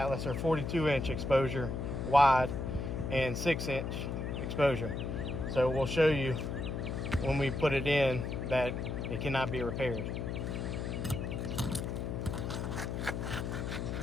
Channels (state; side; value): noise; left; hum, 3 dB below the sound